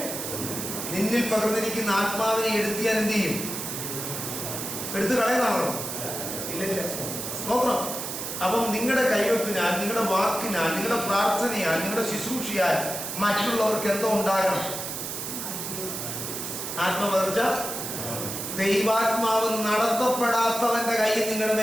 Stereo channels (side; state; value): right; noise; hiss, 5 dB below the sound